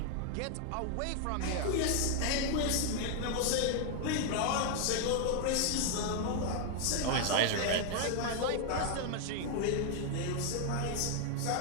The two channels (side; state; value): both; different; correlation 0.00